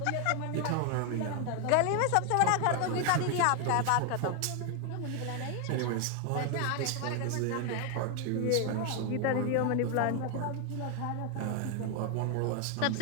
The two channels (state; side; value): different; both; correlation 0.00